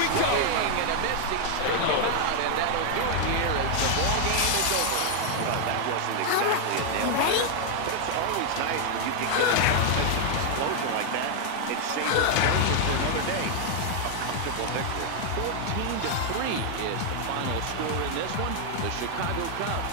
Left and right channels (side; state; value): both; different; correlation 0.00